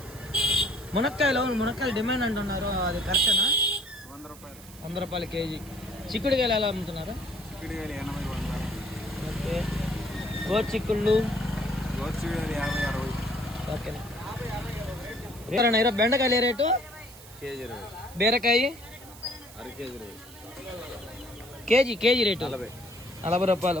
మునక్కాయలు మునక్కాయలు డిమాండ్ అంటున్నారు, అది కరెక్టేనా? 100 రూపాయలు. 100 రూపాయలు కేజీ. చిక్కుడుకాయలు ఎలా అమ్ముతున్నారు? చిక్కుడుకాయలు 80, 100. ఓకే. గోచిక్కుళ్ళు 50, 60. ఓకేనా. ఈరోజు బెండకాయలు ఏ రేటు? కేజీ 20. బీరకాయ అర కేజీ 20. కేజీ రేటు 40 రూపాయలు.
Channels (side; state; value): right; noise; hiss, 19 dB below the sound